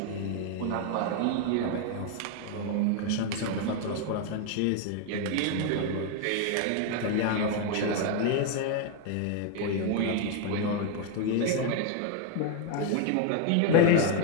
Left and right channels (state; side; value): different; both; correlation 0.01